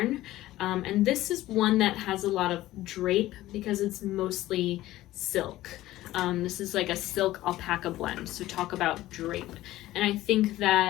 And this is one that has a lot of drape because it's mostly silk. This is like a silk alpaca blend, so talk about drape. And I think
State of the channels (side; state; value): right; quieter; 15.8 dB